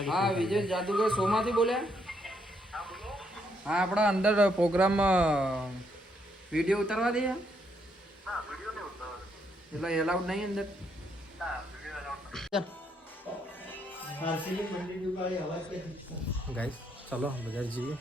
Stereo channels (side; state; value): both; normal; correlation 0.75